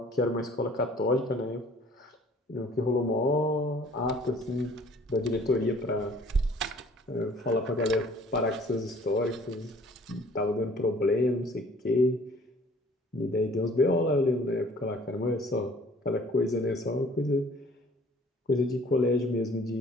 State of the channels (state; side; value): normal; both; correlation 0.54